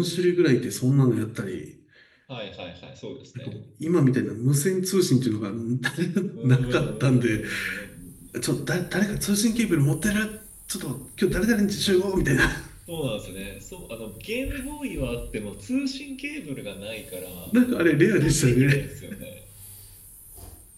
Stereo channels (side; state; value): both; identical; correlation 1.00